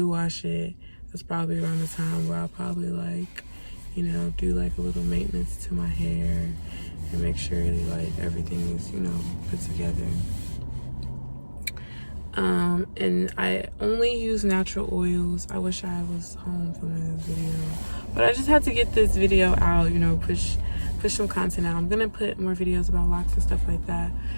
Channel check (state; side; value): inverted; both; correlation -1.00